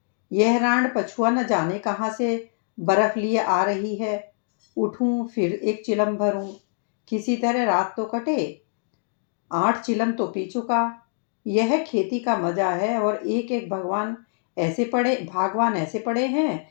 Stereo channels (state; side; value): silent; right; digital silence